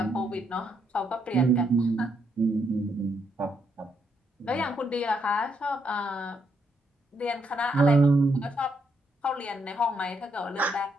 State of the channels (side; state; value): both; normal; correlation 0.76